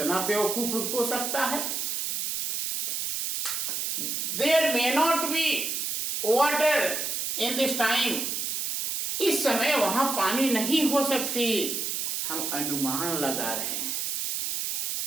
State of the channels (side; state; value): right; noise; hiss, 1 dB below the sound